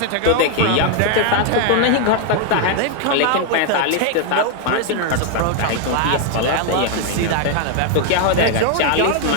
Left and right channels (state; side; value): different; both; correlation 0.00